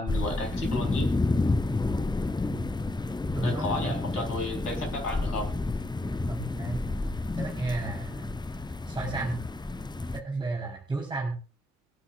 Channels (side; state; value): both; normal; correlation 0.79